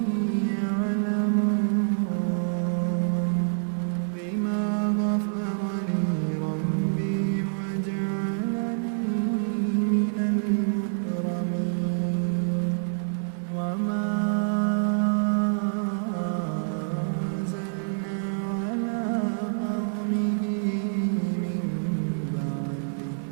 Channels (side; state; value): left; silent; 57 dB below the other